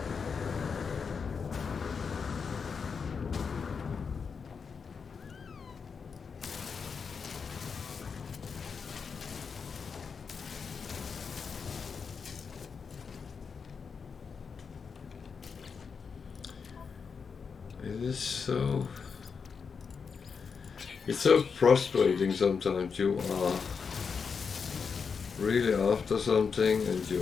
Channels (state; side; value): quieter; right; 5.8 dB